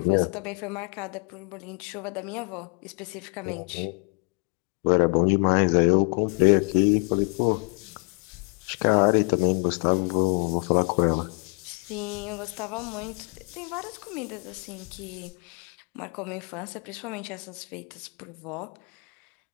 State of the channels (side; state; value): right; quieter; 36.5 dB